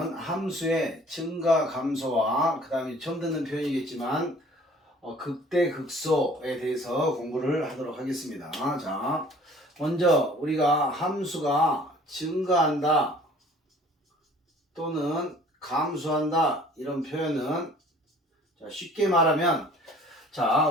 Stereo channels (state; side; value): normal; both; correlation 0.52